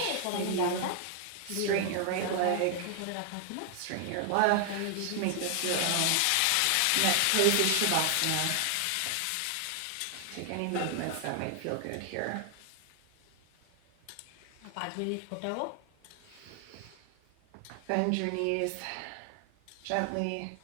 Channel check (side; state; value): both; different; correlation 0.00